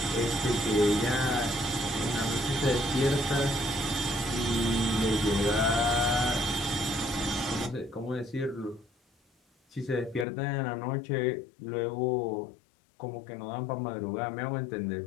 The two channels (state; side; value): drops out; right; at 10.2 s